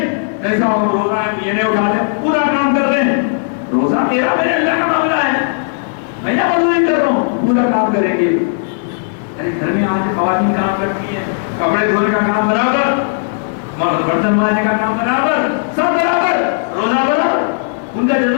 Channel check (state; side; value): silent; right; digital silence